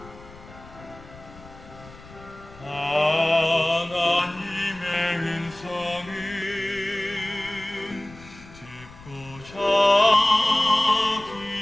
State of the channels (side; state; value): left; noise; rumble, 20 dB below the sound